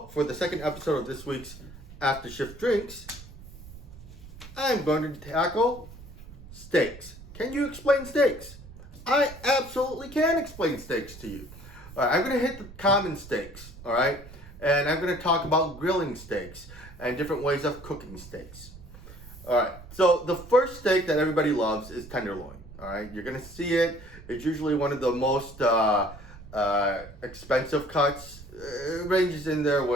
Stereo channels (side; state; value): right; noise; rumble, 17 dB below the sound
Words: for the second episode of this week's After Shift Drinks, I'm going to tackle steaks. Can you explain steaks? I absolutely can explain steaks to you. All right, I'm going to hit the common steaks, all right? And I'm going to talk about grilling steaks and different ways of cooking steaks. All right, so the first steak that everybody loves is tenderloin, all right? You're going to see it. It's usually one of the most expensive cuts. It ranges in there